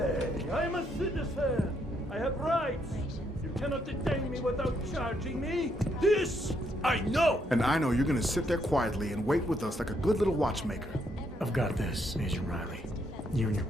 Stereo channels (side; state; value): both; normal; correlation 0.74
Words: I'm a citizen. I have rights. You cannot detain me without charging me. This I know. And I know you're gonna sit there quietly and wait with us like a good little watchmaker. I've got this, Agent Riley. You and your